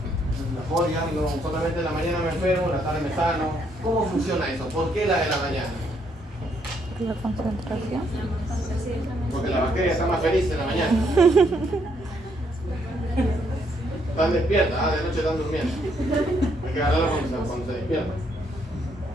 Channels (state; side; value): normal; both; correlation 0.72